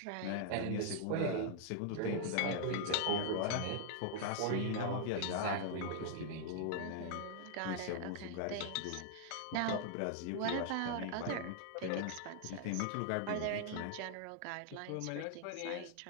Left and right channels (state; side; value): different; both; correlation 0.00